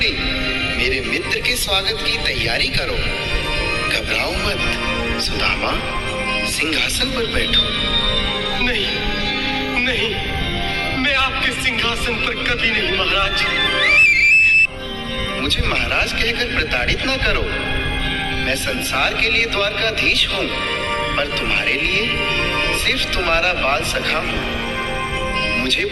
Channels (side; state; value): both; identical; correlation 1.00